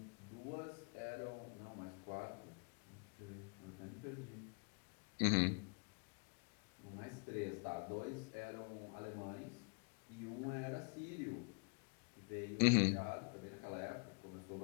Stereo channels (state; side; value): quieter; right; 36.7 dB